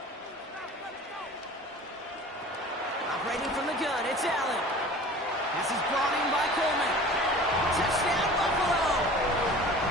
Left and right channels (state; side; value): normal; both; correlation 0.42